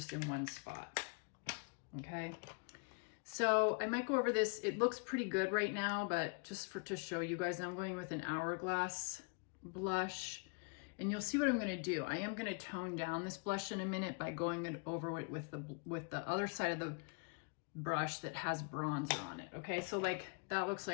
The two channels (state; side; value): quieter; right; 34.4 dB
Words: in one spot. Okay. So I might go over this. It looks pretty good right now, but just to show you guys, I'm going with an Hourglass blush. And you'll see what I'm going to do. I am going to tone down this blush in a minute by going over it with the other side of the brush that has bronzer on it. Okay, so like that looks